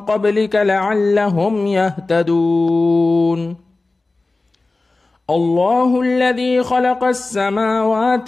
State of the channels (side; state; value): right; quieter; 3.3 dB